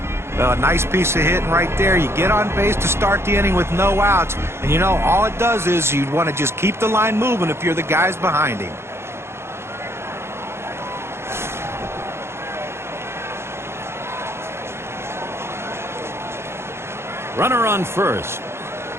Well, a nice piece of hitting right there. You get on base to start the inning with no outs. And, you know, all it does is you'd want to just keep the line moving if you're the guys behind him. Runner on first.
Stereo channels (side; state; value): left; late; 0.12 ms